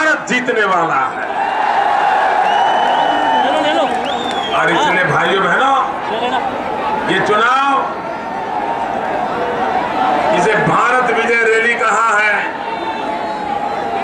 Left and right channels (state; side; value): identical; both; correlation 1.00